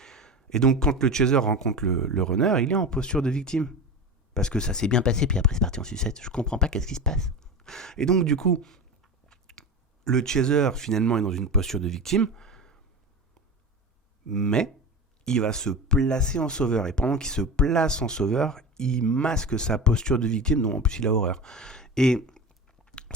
Et donc, quand le chaser rencontre le runner, il est en posture de victime. Parce que ça s'est bien passé, puis après c'est parti en sucette. Je comprends pas qu'est-ce qui se passe. Et donc, du coup, le chaser, finalement, est dans une posture de victime, mais il va se placer en sauveur. Et pendant qu'il se place en sauveur, il masque sa posture de victime, dont en plus il a horreur. Et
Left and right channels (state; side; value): normal; both; correlation 0.27